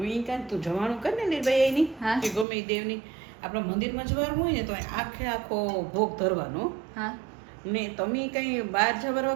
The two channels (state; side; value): drops out; left; at 2.5 s